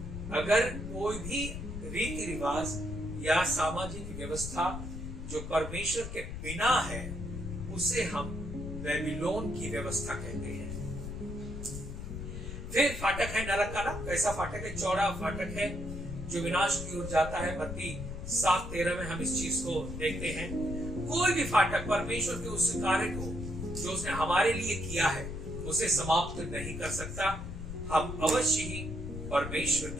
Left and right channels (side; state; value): left; noise; rumble, 7 dB below the sound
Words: अगर कोई भी रीति रिवाज या सामाजिक व्यवस्था जो परमेश्वर के बिना है उसे हम बेबीलोन की व्यवस्था कहते हैं। फिर फाटक है नरक का ना, कैसा फाटक है? चौड़ा फाटक है जो विनाश की ओर जाता है। मत्ती 7:13 में हम इस चीज को देखते हैं। कोई भी फाटक परमेश्वर के उस कार्य को जो उसने हमारे लिए किया है उसे समाप्त नहीं कर सकता। हम अवश्य ही परमेश्वर